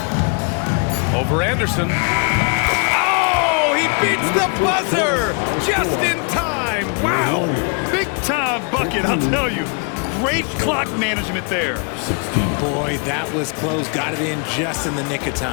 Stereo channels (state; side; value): quieter; right; 37.4 dB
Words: Over Anderson. Oh, he beats the buzzer just in time. Wow. Big time bucket, I'll tell you. Great clock management there. Boy, that was close. Got it in just in the nick of